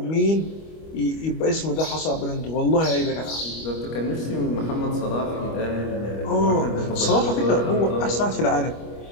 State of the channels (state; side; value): late; right; 25 ms